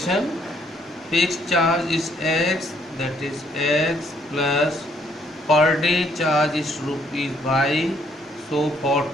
Fixed charge is X, that is X plus per day charge is rupees by, so for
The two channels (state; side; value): normal; both; correlation 0.68